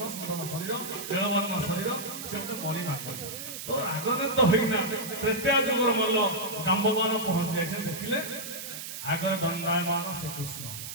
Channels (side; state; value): right; noise; hiss, 8 dB below the sound